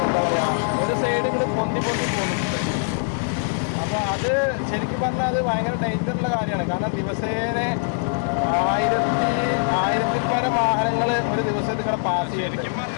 എന്താ പറയുക, ഒരു സൈഡ് ഇങ്ങോട്ട് പൊന്തി പോകുന്നുണ്ട്. അപ്പോൾ അത് ശരിക്കും പറഞ്ഞാൽ അത് ഭയങ്കര ഡേഞ്ചറുള്ള കാര്യമാണ്. കാരണം ദിവസേന 1000-ൽ പരം വാഹനങ്ങൾ ഒരു ദിവസം ഇതിവിടെ പാസ് ചെയ്യുന്നുണ്ട്.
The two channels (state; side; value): silent; right; 56 dB below the other